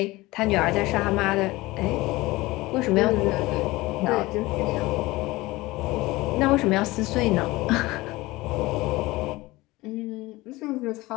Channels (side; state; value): right; quieter; 20.2 dB